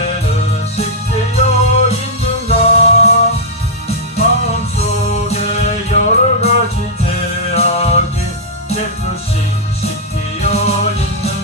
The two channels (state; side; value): normal; both; correlation -0.08